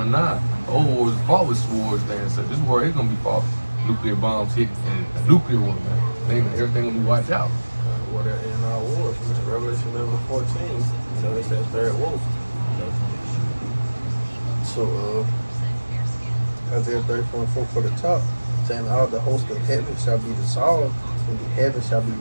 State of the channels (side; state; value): both; inverted; correlation -1.00